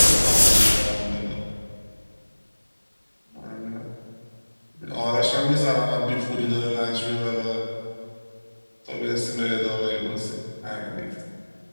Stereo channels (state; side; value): inverted; both; correlation -1.00